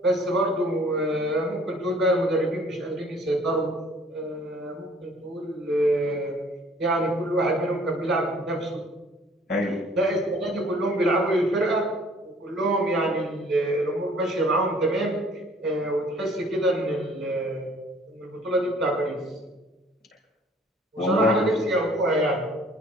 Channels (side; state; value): both; normal; correlation 0.56